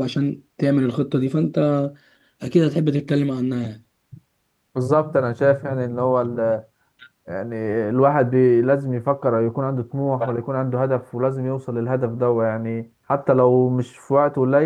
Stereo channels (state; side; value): identical; both; correlation 1.00